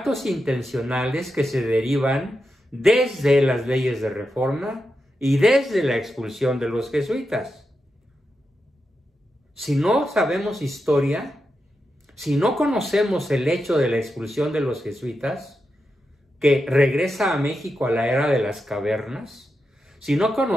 intencionales que se derivan desde las leyes de reforma y desde la expulsión de los jesuitas. Si no sabemos historia, si no conocemos el hecho de la expulsión de los jesuitas, que regresa a México a la era de las cavernas, si no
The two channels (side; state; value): both; normal; correlation 0.88